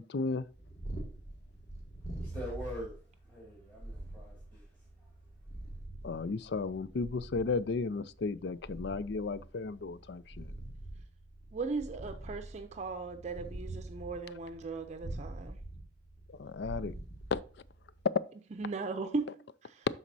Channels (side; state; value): both; normal; correlation 0.28